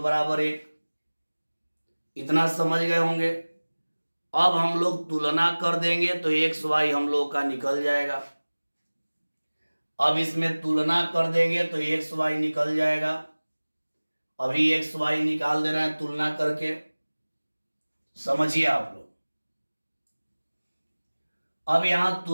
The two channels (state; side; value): inverted; both; correlation -1.00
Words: बराबर 1। इतना समझ गए होंगे। अब हम लोग तुलना कर देंगे तो एक्स वाई हम लोग का निकल जाएगा। अब इसमें तुलना कर देंगे तो एक्स वाई निकल जाएगा। अभी एक्स वाई निकाल दे रहे हैं तुलना करके, समझिए आप लोग। अब यहां